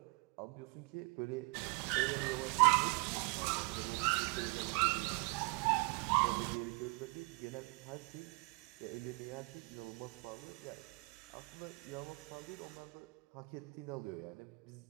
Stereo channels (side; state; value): left; quieter; 30.3 dB